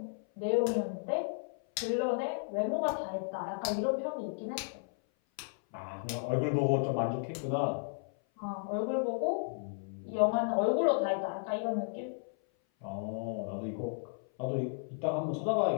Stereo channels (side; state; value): right; silent; 55 dB below the other